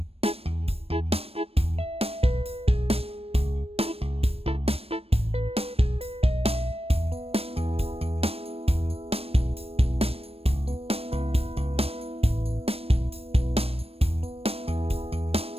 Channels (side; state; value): left; late; 0.28 ms